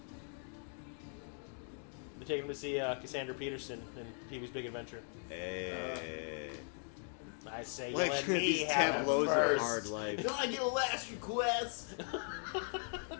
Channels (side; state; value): right; silent; 52 dB below the other